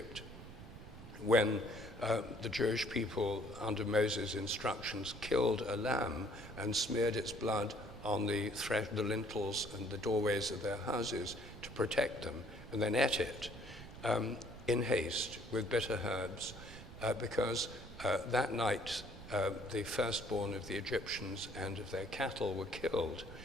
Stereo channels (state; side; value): noise; right; rumble, 14 dB below the sound